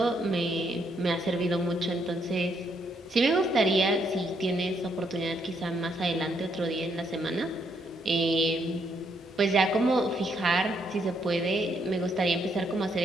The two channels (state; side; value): normal; both; correlation 0.74